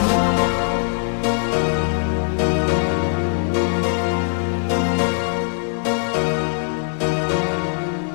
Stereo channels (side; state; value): right; silent; 65 dB below the other